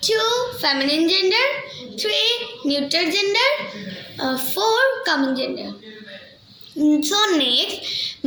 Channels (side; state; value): both; identical; correlation 1.00